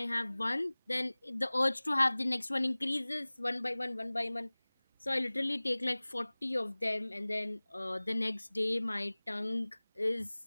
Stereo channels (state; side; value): inverted; both; correlation -1.00